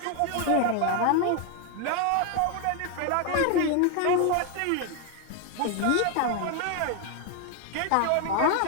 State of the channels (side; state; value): both; different; correlation 0.01